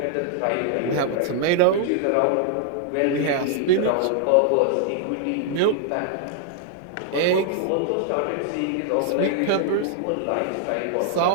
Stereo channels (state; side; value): different; both; correlation 0.00